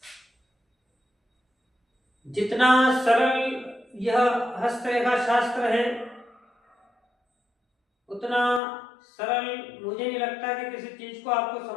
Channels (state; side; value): drops out; right; at 8.6 s